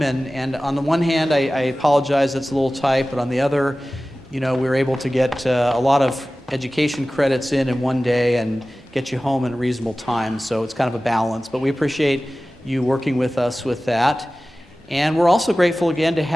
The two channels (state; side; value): normal; both; correlation 0.97